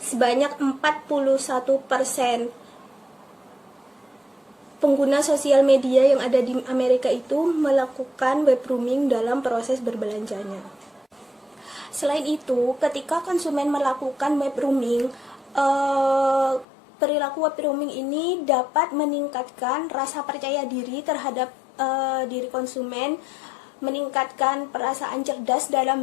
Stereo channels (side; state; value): right; drops out; at 16.7 s